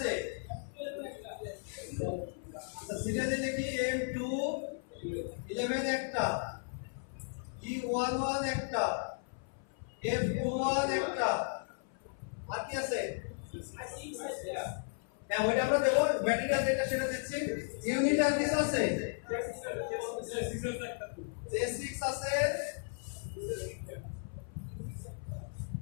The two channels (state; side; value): silent; right; 54 dB below the other